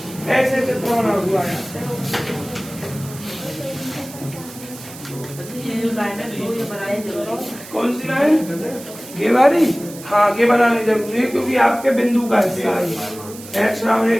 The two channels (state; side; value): noise; right; hiss, 16 dB below the sound